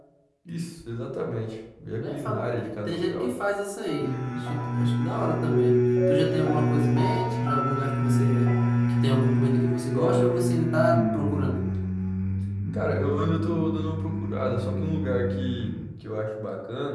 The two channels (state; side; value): identical; both; correlation 1.00